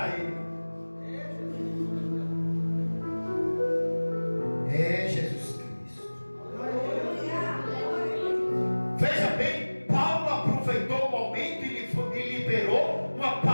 ele. É Jesus Cristo. Veja bem, Paulo aproveitou o momento e liberou uma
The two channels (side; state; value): both; inverted; correlation -1.00